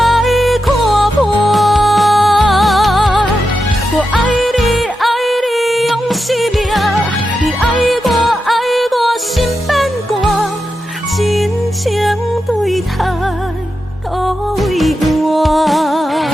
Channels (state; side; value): normal; both; correlation 0.89